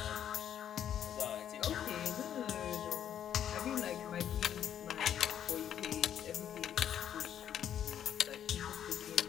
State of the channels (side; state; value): right; quieter; 9.7 dB